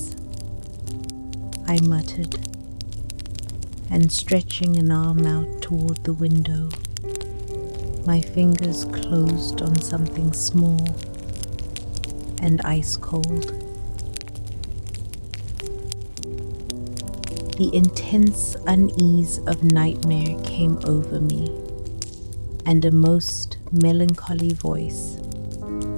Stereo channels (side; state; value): both; inverted; correlation -1.00